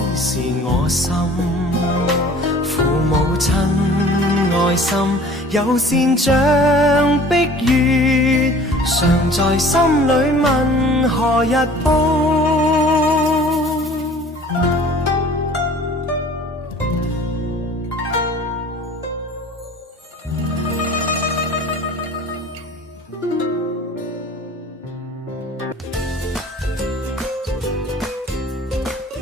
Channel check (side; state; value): both; normal; correlation 0.47